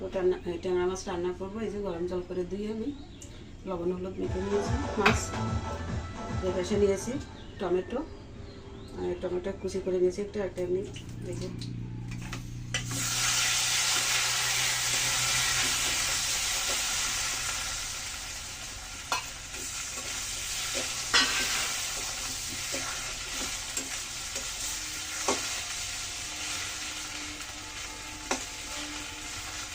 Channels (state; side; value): identical; both; correlation 1.00